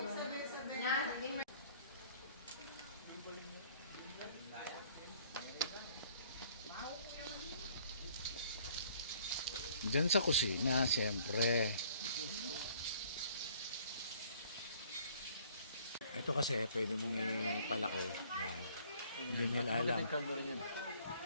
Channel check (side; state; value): both; inverted; correlation -0.58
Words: Diyan sa kusina, siyempre. Ito kasi, pwede mong ipalaki. Yan. Hindi nila alam. Hindi